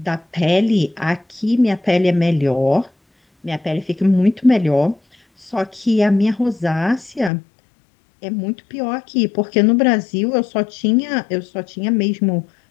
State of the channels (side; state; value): right; drops out; at 7.3 s